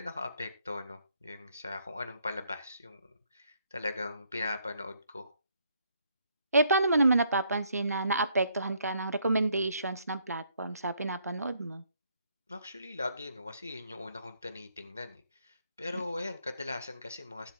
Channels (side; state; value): both; inverted; correlation -0.70